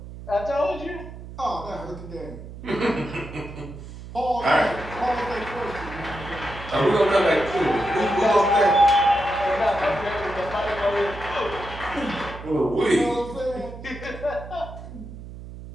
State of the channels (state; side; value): noise; right; hum, 13 dB below the sound